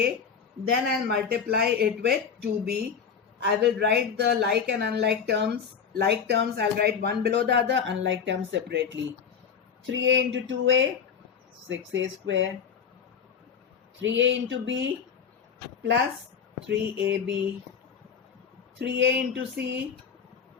then I'll multiply it with 2b. I will write the like and unlike terms. Like terms I'll write one below the other, unlike terms separately. 3a into 2a, 6a square. 3a into b plus 3ab. 3a into c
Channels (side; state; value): right; quieter; 6.8 dB